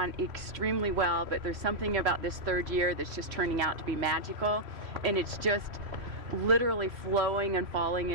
extremely well, but there's something about this third year that's just turning out to be magical, and it's just literally flowing and falling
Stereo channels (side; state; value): left; late; 3.0 ms